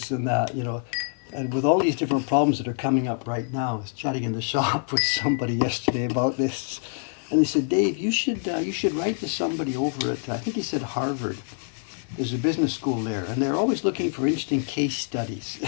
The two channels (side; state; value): right; silent; digital silence